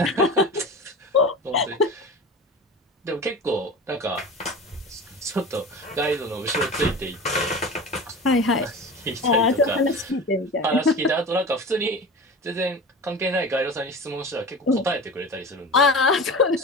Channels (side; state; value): both; normal; correlation 0.32